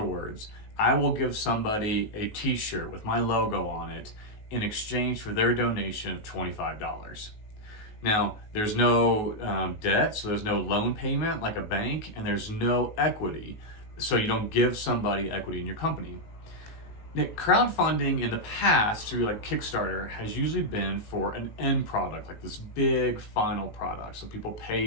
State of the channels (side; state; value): right; late; 19 ms